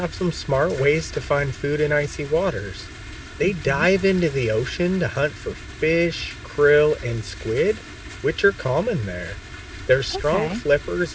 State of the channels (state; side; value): identical; both; correlation 1.00